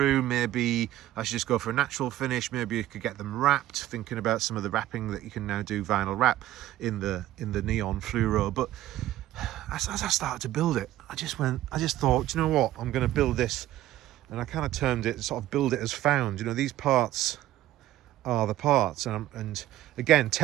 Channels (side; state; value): left; quieter; 14.3 dB